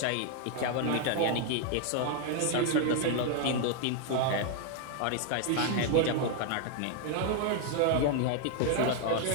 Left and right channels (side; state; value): both; different; correlation 0.00